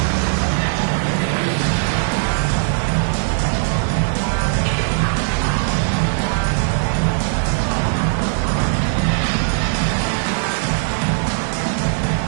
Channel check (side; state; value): left; silent; 67 dB below the other